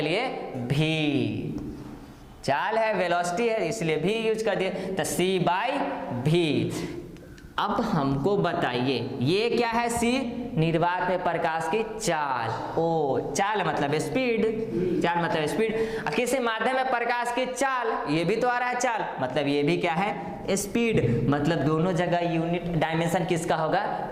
लिए v। चाल है, वेलोसिटी है, इसलिए v यूज कर दिए, तो c/v। अब हमको बताइए ये क्या है? c निर्वात में प्रकाश की चाल। ओ, चाल मतलब स्पीड, चाल मतलब स्पीड। किसी माध्यम में प्रकाश की चाल, ये भी तो आ रहा है चाल, मतलब ये भी क्या है? स्पीड। मतलब दोनों जगह यूनिट डायमेंशन किसका होगा?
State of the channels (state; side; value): identical; both; correlation 1.00